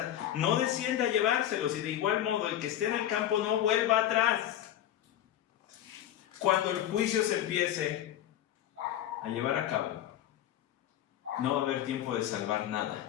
no descienda a llevárselos, y de igual modo el que esté en el campo no vuelva atrás. Cuando el juicio se empiece a llevar a cabo, no va a haber tiempo de salvar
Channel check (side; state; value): right; quieter; 11.8 dB